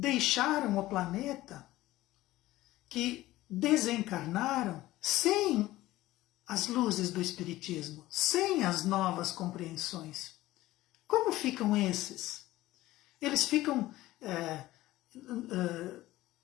o planeta, que desencarnaram sem as luzes do Espiritismo, sem as novas compreensões? Como ficam esses? Eles ficam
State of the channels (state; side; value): quieter; right; 16.7 dB